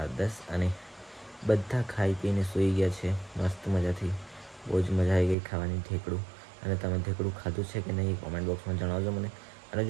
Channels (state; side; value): drops out; left; at 5.4 s